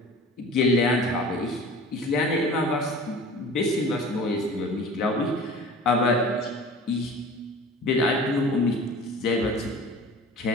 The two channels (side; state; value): both; normal; correlation 0.41